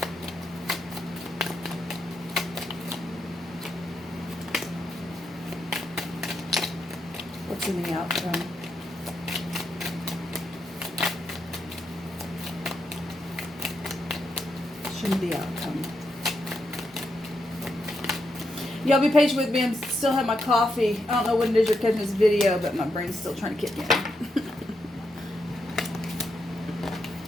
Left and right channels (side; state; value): both; normal; correlation 0.83